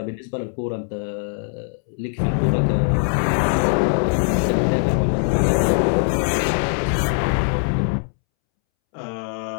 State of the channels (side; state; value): right; silent; 65 dB below the other